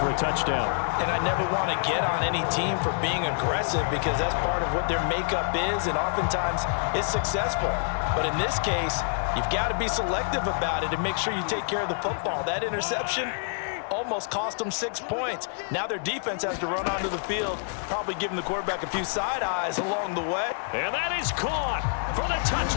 a touchdown. And I never want to get on any team for being aggressive because that's part of what their makeup is, and oftentimes it's successful. But in this case, you've got to be selective about it and make sure you take care of the football. That interception almost cost them 6 points. Now their defense has to run onto the field, probably giving the quarterback a few side eyes along the way. And that is caught for the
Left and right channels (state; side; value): silent; right; digital silence